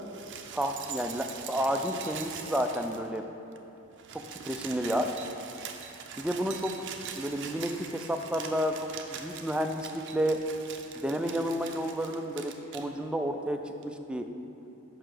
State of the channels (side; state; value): both; normal; correlation 0.67